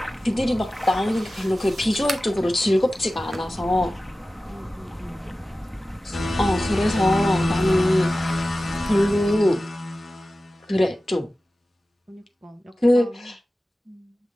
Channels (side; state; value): both; normal; correlation 0.95